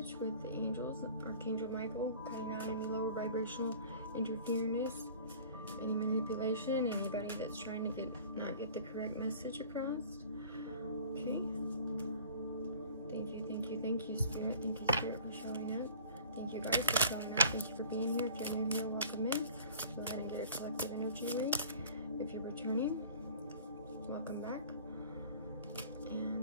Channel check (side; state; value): both; inverted; correlation -0.46